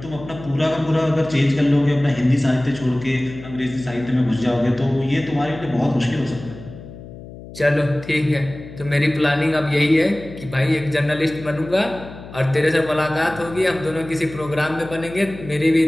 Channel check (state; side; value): noise; left; hum, 15 dB below the sound